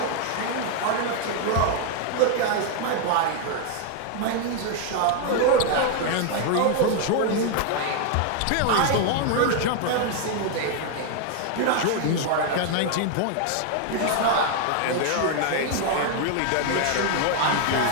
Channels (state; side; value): different; both; correlation 0.00